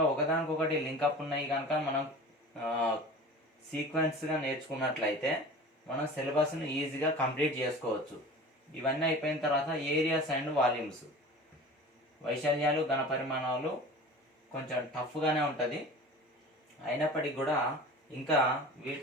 ఒకదానికొకటి లింకప్ ఉన్నాయి కనుక మనం సీక్వెన్స్గా నేర్చుకున్నట్లయితే మనం సిలబస్ను ఈజీగా కంప్లీట్ చేసుకోవచ్చు. ఇవన్నీ అయిపోయిన తర్వాత ఏరియాస్ అండ్ వాల్యూమ్స్, వైశాల్యాలు, ఘనపరిమాణాలు కొంచెం టఫ్గానే ఉంటుంది. అయినప్పటికీ కూడా ఇంకా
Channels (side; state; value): both; normal; correlation 0.38